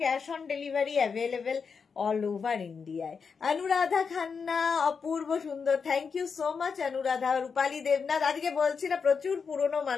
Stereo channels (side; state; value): right; quieter; 5.7 dB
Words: Cash on delivery available all over ইন্ডিয়ায়। অনুরাধা খান্না, অপূর্ব সুন্দর, thank you so much Anuradha. Rupali Debnath, আজকে বলছি না প্রচুর পুরনো